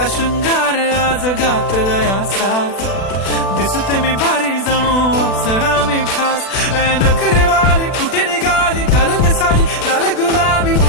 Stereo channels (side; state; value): right; late; 36 ms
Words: शृंगार आज घातलाय असाच, दिसते मी भारी जणू अप्सरा मी खास. नखरेवाली कुठे निघाली घालून साडी लाल गुलाबी,